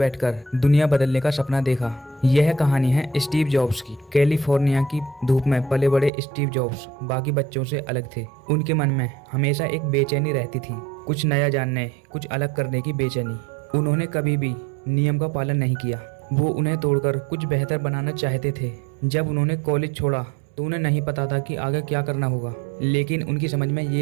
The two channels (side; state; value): left; drops out; at 6.1 s